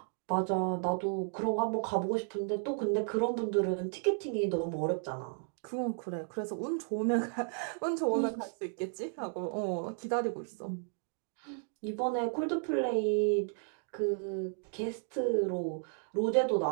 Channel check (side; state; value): left; silent; 55 dB below the other